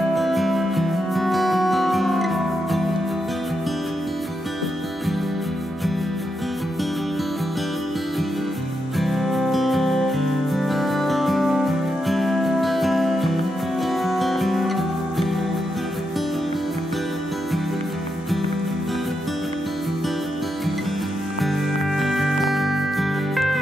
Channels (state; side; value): normal; both; correlation 0.84